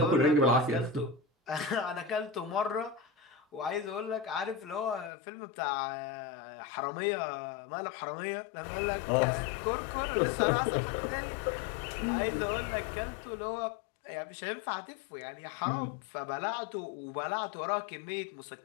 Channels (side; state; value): right; drops out; at 5.1 s